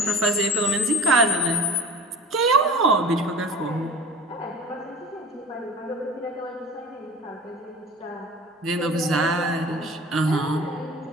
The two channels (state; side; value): normal; both; correlation 0.39